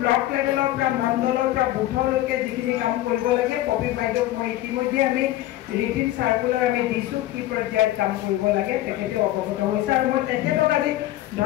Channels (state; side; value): quieter; right; 15.0 dB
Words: ব্লক লেভেলৰ পৰা মণ্ডলৰ পৰা বুথলৈকে যিখিনি কাম কৰিব লাগে, কবি বাইদেউক মই ইতিমধ্যে আমি ৰিটিন চাৰ্কুলাৰ আমি দিছোঁ, কি পৰ্যায়ত কাম কৰিব লাগে তেখেতে অৱগত হৈছে। আৰু মই তেখেতক আজি